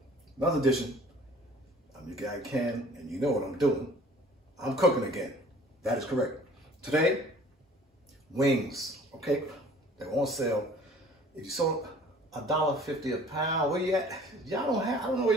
Another edition. I'm your guy Ken, and you know what I'm doing. I'm cooking again. That is correct. Today, wings, okay? They're on sale. If you saw $1.50 a pound, where you at? I don't know where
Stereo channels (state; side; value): normal; both; correlation 0.50